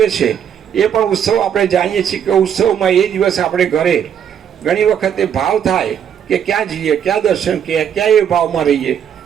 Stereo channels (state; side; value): quieter; left; 8.7 dB